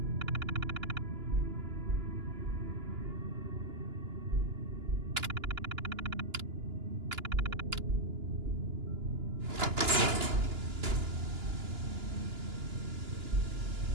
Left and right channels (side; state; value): left; late; 2.9 ms